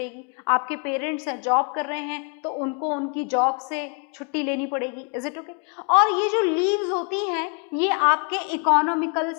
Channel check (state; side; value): quieter; right; 37.8 dB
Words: आपके पेरेंट्स हैं, जॉब कर रहे हैं तो उनको उनकी जॉब से छुट्टी लेनी पड़ेगी. Is it okay? और ये जो लीव्स होती हैं ये आपके इकोनॉमिकल